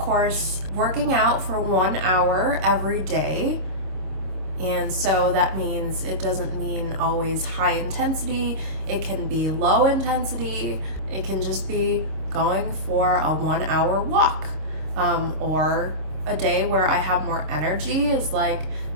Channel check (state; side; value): late; left; 26 ms